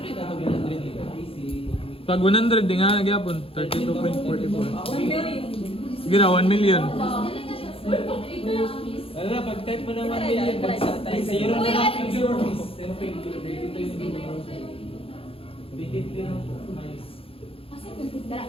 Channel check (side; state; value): right; late; 0.27 ms